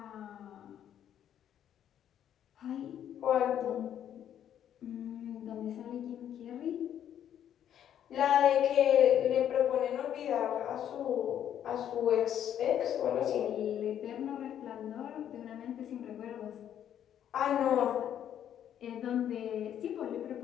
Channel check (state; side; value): quieter; right; 10.0 dB